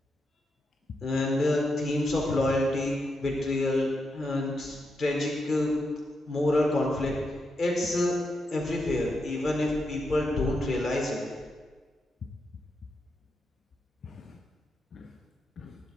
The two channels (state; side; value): normal; both; correlation 0.84